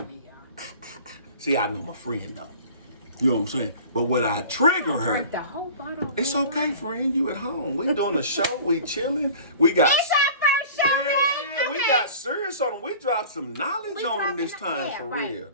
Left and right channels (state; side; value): inverted; both; correlation -0.42